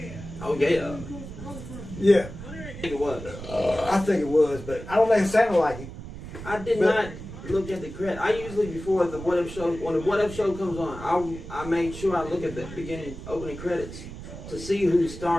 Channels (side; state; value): right; noise; rumble, 12 dB below the sound